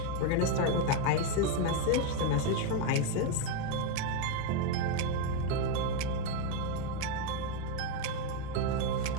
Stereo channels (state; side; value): different; both; correlation 0.02